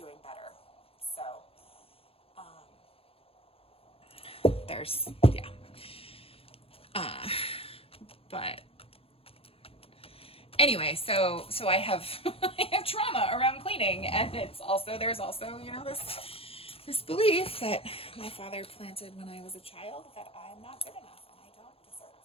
better. So there's but anyway, so I have I have trauma around cleaning, and there's also this belief that my father planted when I was a child, that I'm not good enough and I don't deserve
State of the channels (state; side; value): late; right; 0.27 ms